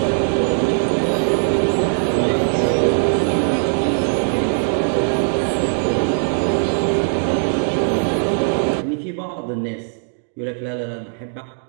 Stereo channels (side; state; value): left; silent; 63 dB below the other